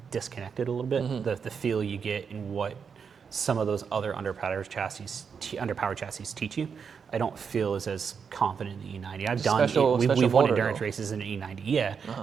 disconnected a little bit. The feel you get in what some of those other underpowered chassis teach you. I don't feel as confident in the E90. We've won endurance races in an E90. Yeah,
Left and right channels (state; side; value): quieter; left; 6.3 dB